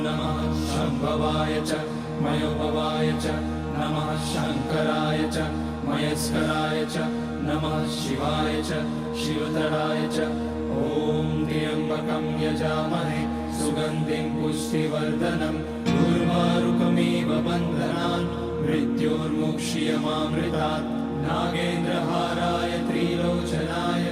नमः शम्भवाय च मयोभवाय च नमः शङ्कराय च मयस्कराय च नमः शिवाय च शिवतराय च। ॐ त्र्यम्बकं यजामहे सुगन्धिं पुष्टिवर्धनम् उर्वारुकमिव बन्धनान् मृत्योर्मुक्ष्यमामृतात्। नागेन्द्रहाराय त्रिलोचनाय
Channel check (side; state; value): both; identical; correlation 1.00